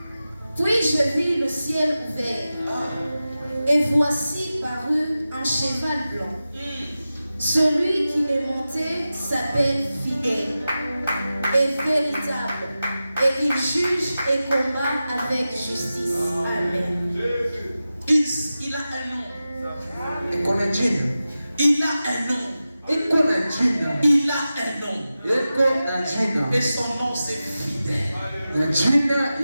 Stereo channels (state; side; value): inverted; both; correlation -0.94